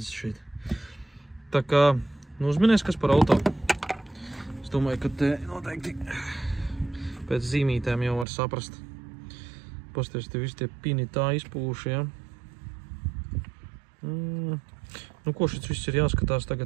šeit. Tā kā, nu uzminies, kas par auto. Es domāju, ka te noteikti pēc zīmītēm jau var saprast. Pasties, te visi tie pini tā izpūši, jā. Nu, ko šis viss ir jāskatās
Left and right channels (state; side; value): drops out; left; at 8.2 s